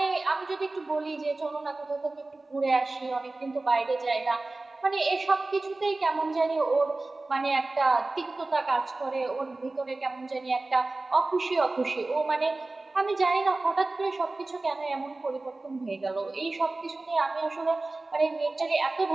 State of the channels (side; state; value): left; quieter; 3.1 dB